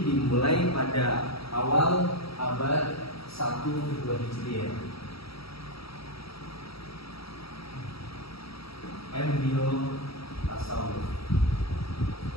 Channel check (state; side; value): late; right; 0.76 ms